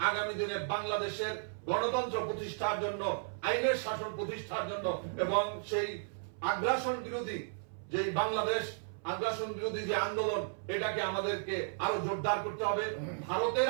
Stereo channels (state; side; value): silent; left; 55 dB below the other